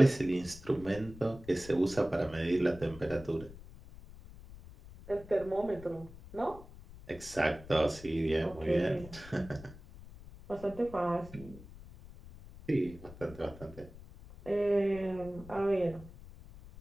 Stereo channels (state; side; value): noise; left; rumble, 17 dB below the sound